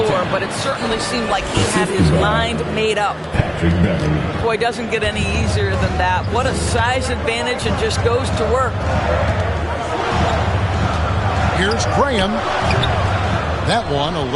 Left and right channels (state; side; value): identical; both; correlation 1.00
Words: floor, but it certainly seemed like he had his mind made up. Boy, doesn't get any easier than that. What a size advantage, and just goes to work. Here's Graham. That one a